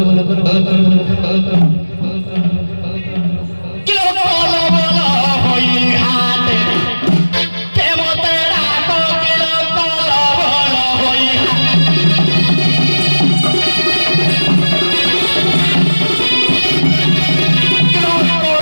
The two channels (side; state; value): both; inverted; correlation -1.00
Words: बोलो कल बोलो किलो कल बोलो होई हाथ के मोतेरा को किलो कल बोलो होई